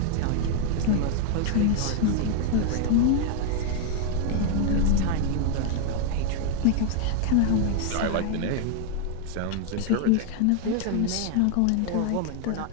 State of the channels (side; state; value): both; different; correlation 0.00